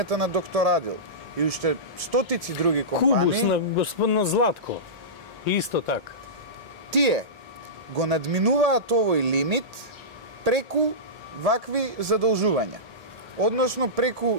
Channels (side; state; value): both; normal; correlation -0.18